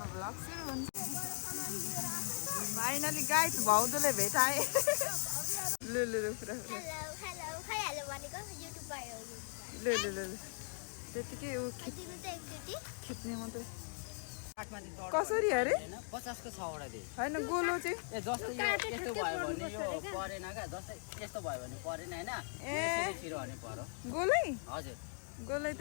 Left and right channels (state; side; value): silent; right; 52 dB below the other